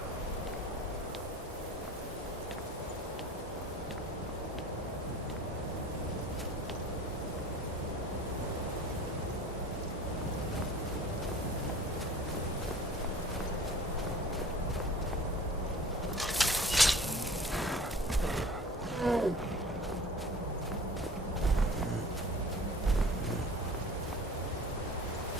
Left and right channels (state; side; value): normal; both; correlation 0.43